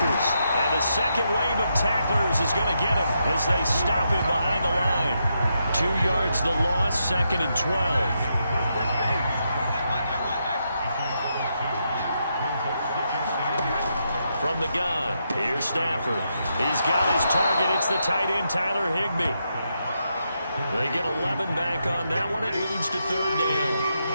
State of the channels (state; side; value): inverted; both; correlation -0.82